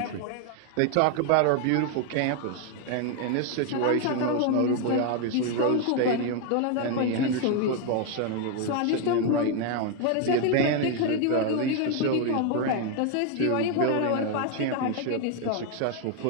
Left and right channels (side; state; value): both; different; correlation 0.00